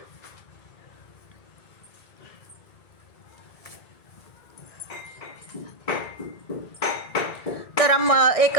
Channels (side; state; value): right; late; 1.6 ms